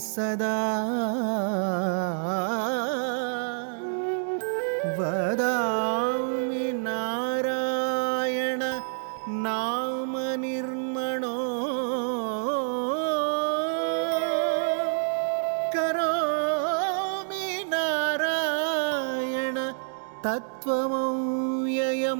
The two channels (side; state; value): left; silent; digital silence